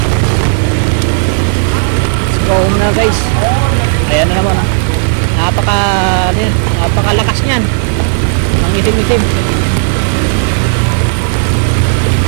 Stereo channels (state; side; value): silent; left; digital silence